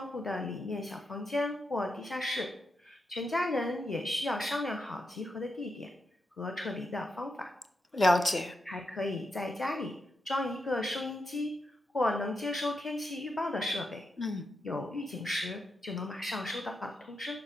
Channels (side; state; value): both; normal; correlation 0.85